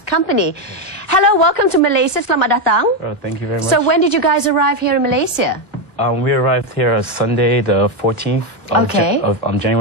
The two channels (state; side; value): normal; both; correlation 0.07